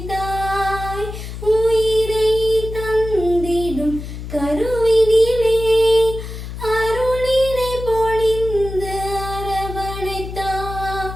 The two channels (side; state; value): left; noise; hum, 9 dB below the sound